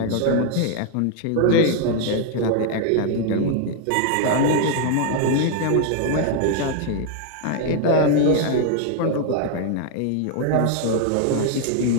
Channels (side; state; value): both; different; correlation 0.00